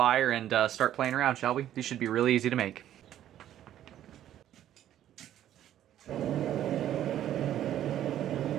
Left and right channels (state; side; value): quieter; left; 11.7 dB